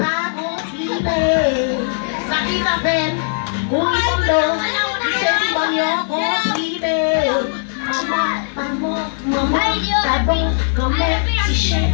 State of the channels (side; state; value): right; silent; digital silence